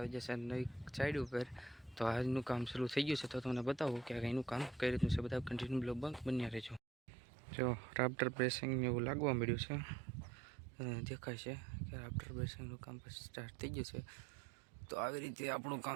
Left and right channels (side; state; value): left; drops out; at 6.8 s